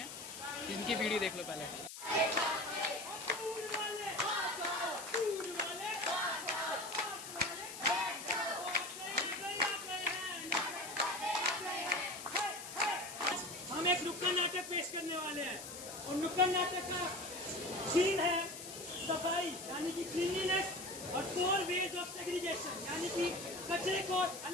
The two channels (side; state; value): left; noise; hiss, 11 dB below the sound